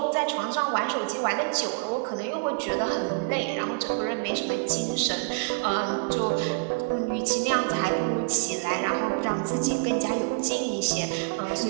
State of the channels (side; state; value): left; quieter; 36.0 dB